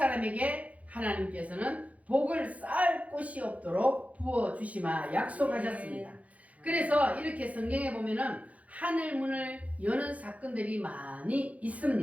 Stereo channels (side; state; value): left; late; 0.068 ms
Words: 하나님께서는 복을 쌓을 곳이 없도록 부어주시마 약속하셨습니다. 그래서 이렇게 성경에 보면은 하늘문을 여는 사건들이 많이